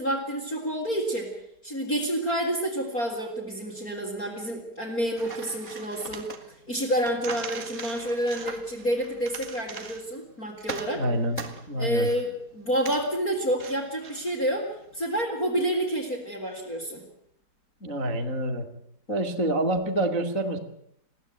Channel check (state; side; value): late; right; 4.4 ms